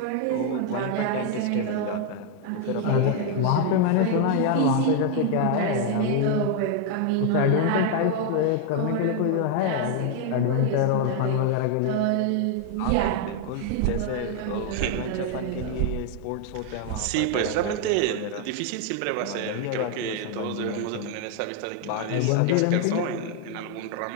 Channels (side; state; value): both; different; correlation 0.00